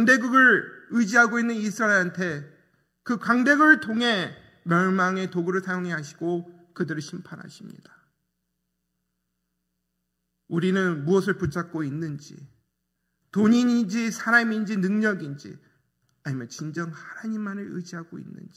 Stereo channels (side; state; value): both; identical; correlation 1.00